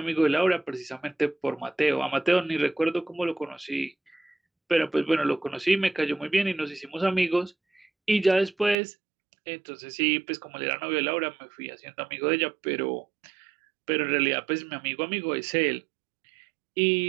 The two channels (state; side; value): drops out; left; at 8.8 s